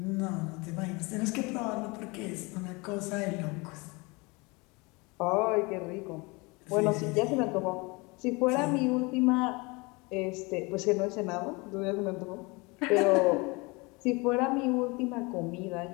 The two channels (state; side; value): quieter; right; 26.5 dB